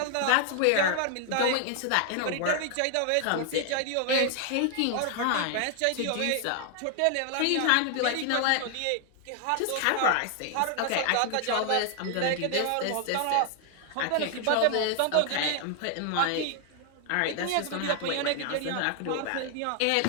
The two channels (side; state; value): both; different; correlation 0.00